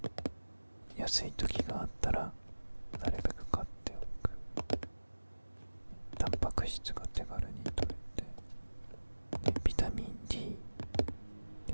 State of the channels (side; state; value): both; inverted; correlation -1.00